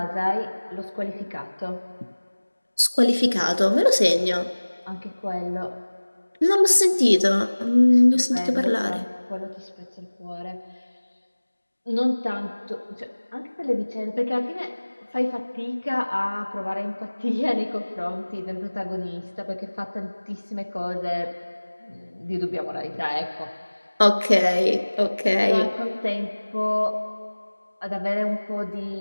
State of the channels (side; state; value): both; inverted; correlation -1.00